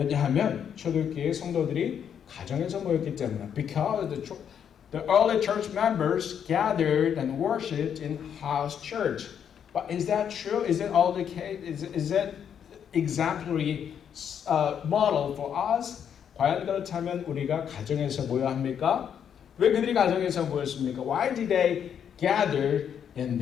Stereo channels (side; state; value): right; quieter; 8.3 dB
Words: 초대교회 성도들이 가정에서 모였기 때문에. Because the early church members gathered and worshipped in house church. But is that true? Is it all the case? Is that exemplary model for us? 과연 그렇다면 우리가 가정에서 모여야 합니까? 왜 그들이 가정에서 모였습니까? Why did they gather in